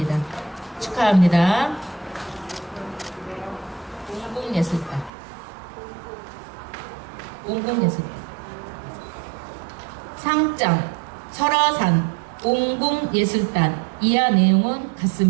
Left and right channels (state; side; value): drops out; left; at 5.1 s